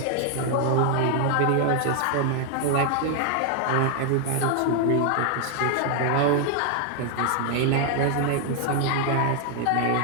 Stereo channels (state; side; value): different; both; correlation 0.00